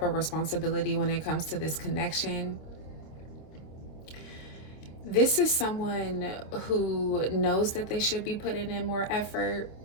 of responsibility when it comes to this connection. This is someone who knows that they should be putting in more effort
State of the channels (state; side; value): late; right; 26 ms